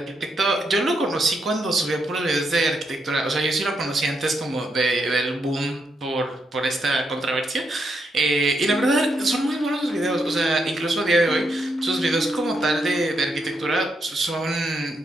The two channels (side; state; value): both; normal; correlation 0.80